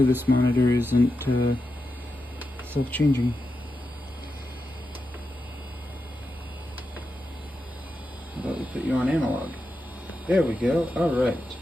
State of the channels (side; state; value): both; normal; correlation 0.88